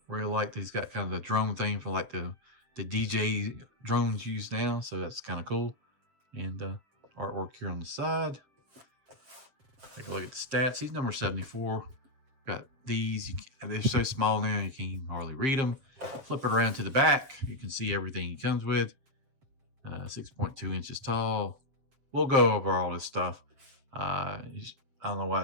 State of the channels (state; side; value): late; left; 7.8 ms